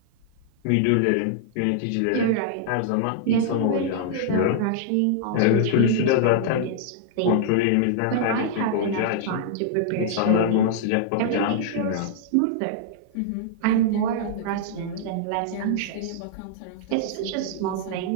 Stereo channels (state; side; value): different; both; correlation -0.01